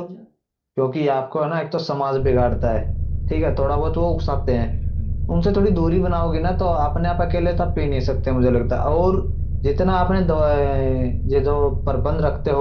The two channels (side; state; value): both; identical; correlation 1.00